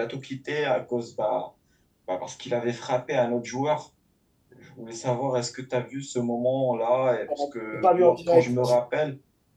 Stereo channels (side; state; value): both; identical; correlation 1.00